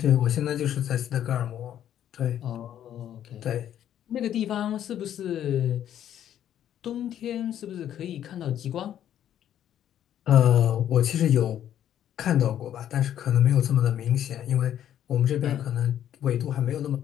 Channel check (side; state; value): right; quieter; 10.7 dB